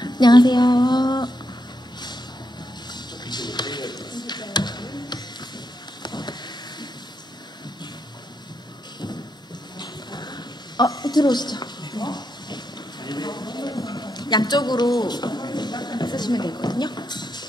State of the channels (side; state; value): both; normal; correlation 0.82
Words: 안녕하세요. 들어오시죠. 양쪽으로 쓰시면 되거든요.